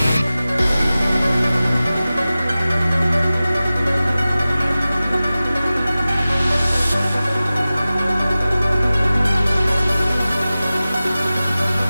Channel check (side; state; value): both; inverted; correlation -0.96